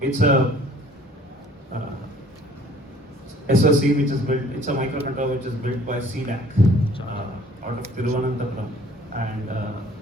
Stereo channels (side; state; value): both; normal; correlation 0.54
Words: it's a SoC which is built, it's a microcontroller which is built by CDAC out of Thiruvananthapuram, and